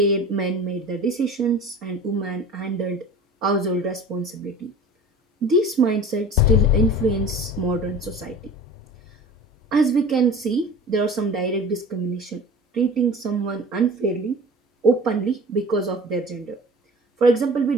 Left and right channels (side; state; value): both; normal; correlation 0.40